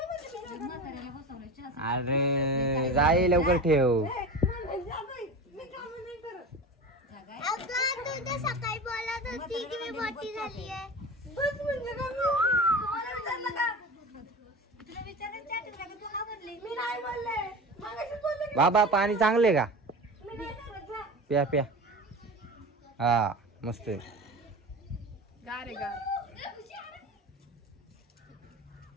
अरे जाई लवकर ठेव. तू सकाळी बोलत होती की मी मोठी झाली आहे. बाबा पाणी चांगले का? प्या प्या. हा मस्त आहे. गार आहे गार.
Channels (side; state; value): both; normal; correlation 0.30